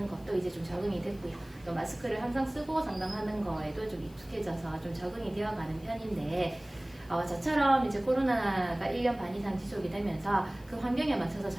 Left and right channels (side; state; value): left; noise; hiss, 26 dB below the sound